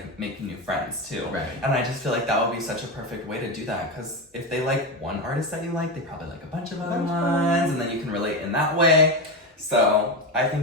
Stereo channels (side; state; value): both; normal; correlation 0.15